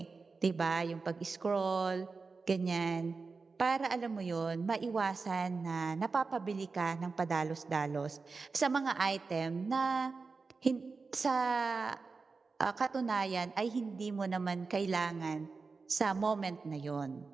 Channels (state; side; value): quieter; left; 4.4 dB